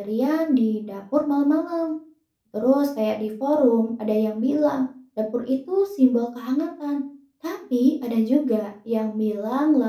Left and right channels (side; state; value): both; identical; correlation 1.00